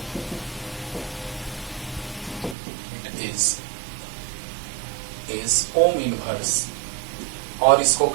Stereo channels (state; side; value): drops out; left; at 2.6 s